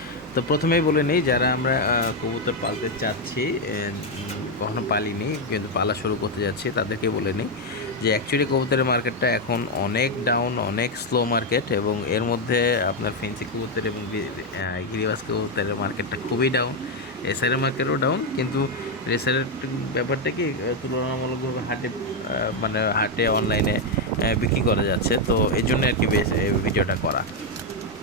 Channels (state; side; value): normal; both; correlation 0.03